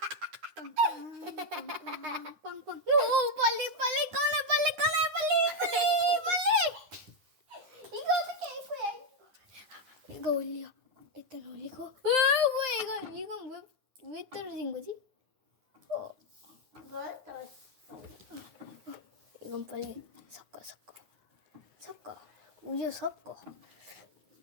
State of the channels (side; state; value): left; late; 9.7 ms